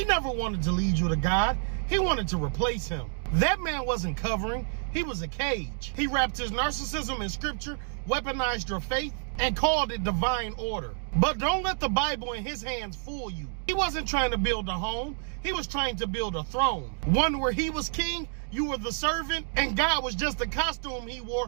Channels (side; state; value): left; silent; 59 dB below the other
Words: never wanted to lead you to God. He wanted to replace him. That man wasn't covering. He was a cage. He wrapped his narcissism in scripture, weaponized your faith, and called it divine order. But don't let the Bible in his hands fool you. He wasn't trying to build a home. He was trying to build a throne. One where he was king, you were the servant, and God was just the costume he